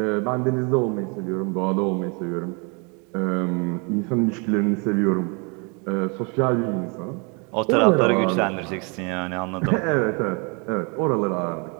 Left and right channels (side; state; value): left; quieter; 33.0 dB